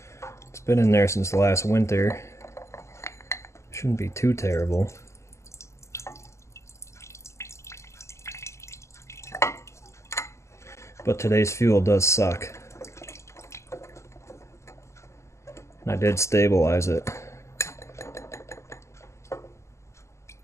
It's been in there since last winter. Shouldn't be too terrible. But today's fuel does suck. And I did stabilize it.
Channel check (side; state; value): right; late; 0.13 ms